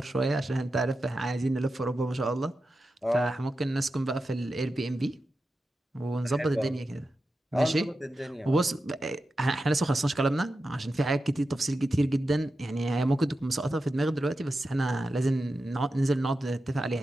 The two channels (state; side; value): normal; both; correlation 0.91